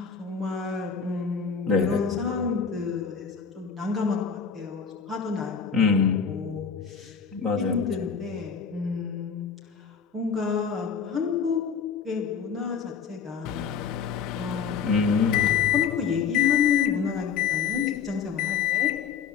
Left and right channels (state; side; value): quieter; right; 6.5 dB